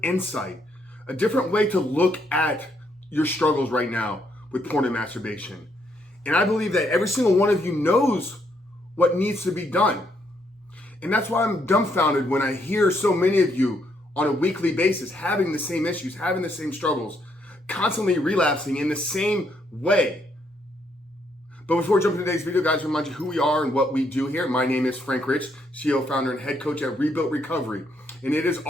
insight, a different way to look at your struggles right now with porn and masturbation. And I believe that every single one of you knows what needs to be done. And that's why I'm dumbfounded when I hear so many of you on a weekly basis having the same issues, having the same struggles, constantly relapsing in the same way. But before we jump into today's video, guys, remind you who we are and what we do here. My name is Frank Rich, CEO, founder, and head coach at Rebuilt Recovery. And it is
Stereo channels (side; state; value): both; normal; correlation 0.74